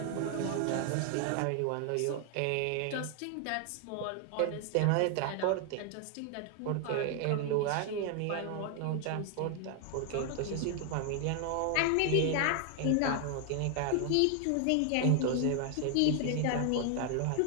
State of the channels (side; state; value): both; different; correlation 0.00